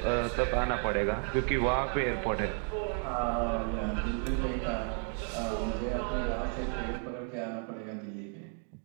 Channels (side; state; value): left; quieter; 39.4 dB